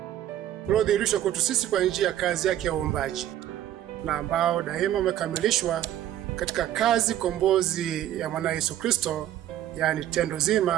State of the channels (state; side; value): quieter; left; 12.2 dB